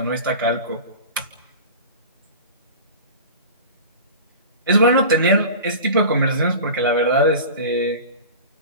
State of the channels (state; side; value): inverted; both; correlation -0.35